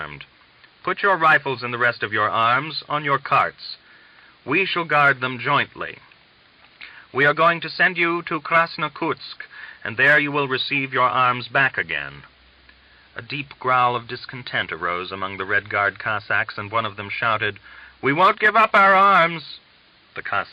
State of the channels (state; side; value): identical; both; correlation 1.00